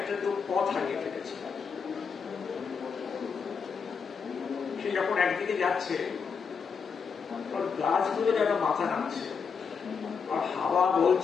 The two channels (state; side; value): quieter; right; 5.9 dB